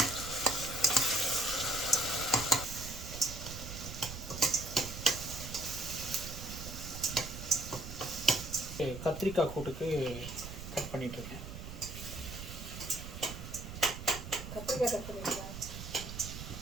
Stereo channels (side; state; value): right; noise; rumble, 9 dB below the sound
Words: கத்திரிக்காய் கூட்டுக்கு கட் பண்ணிட்டுருக்கேன். கத்திரிக்காய் கட் பண்ணிருக்கேன்.